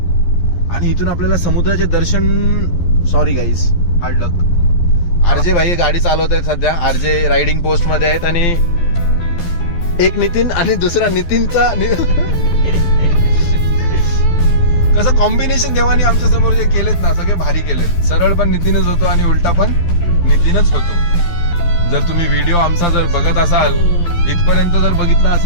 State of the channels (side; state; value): right; late; 11 ms